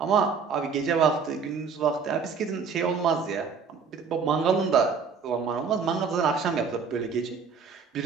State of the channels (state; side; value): quieter; left; 5.7 dB